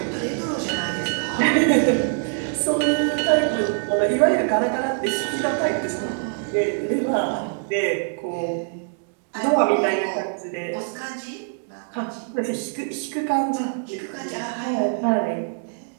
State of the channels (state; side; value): silent; left; 63 dB below the other